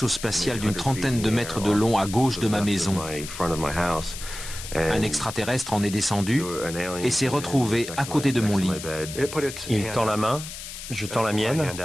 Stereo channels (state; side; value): noise; left; hiss, 10 dB below the sound